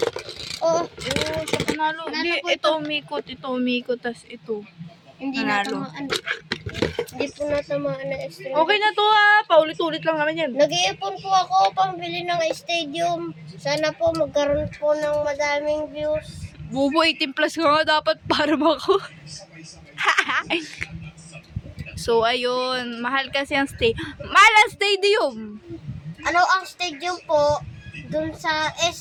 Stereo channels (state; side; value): identical; both; correlation 1.00